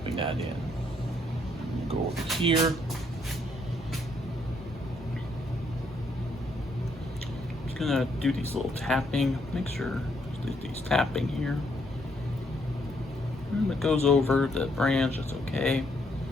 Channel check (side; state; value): both; normal; correlation 0.72